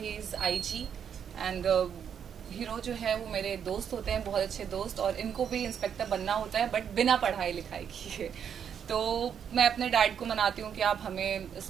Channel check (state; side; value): quieter; left; 8.1 dB